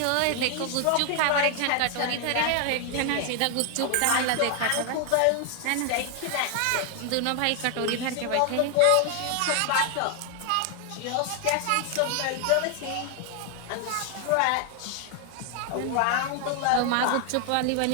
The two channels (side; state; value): both; different; correlation 0.00